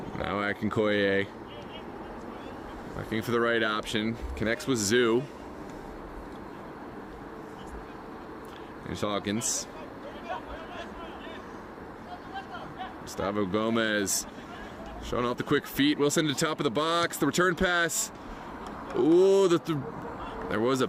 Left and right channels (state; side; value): identical; both; correlation 1.00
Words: Now Akinkoye, looking for the right option. Connects with Zoo. Here's Hawkins. Gustavo Gomez showing off the quick feet. Wilson to the top of the box. The return pass. Ooh, there was a